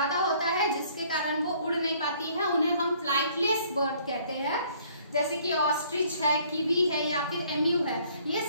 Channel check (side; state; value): both; inverted; correlation -0.60